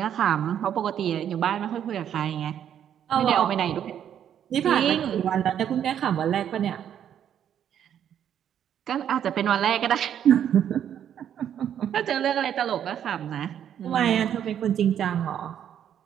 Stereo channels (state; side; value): quieter; left; 9.6 dB